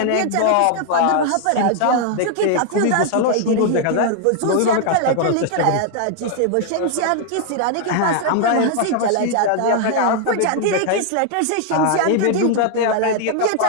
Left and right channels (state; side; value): different; both; correlation 0.00